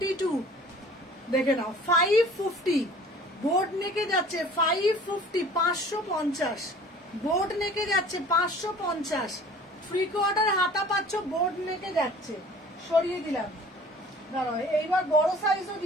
দেখে নাও, 550 বোর্ড নেকে যাচ্ছে, 550 550 বোর্ড নেকে যাচ্ছে, 550 ফ্রি কোয়ার্টার হাতা পাচ্ছ, বোর্ড নেকে যাচ্ছে। সরিয়ে দিলাম। দাঁড়াও এইবার বড় সাইজও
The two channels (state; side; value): normal; both; correlation 0.48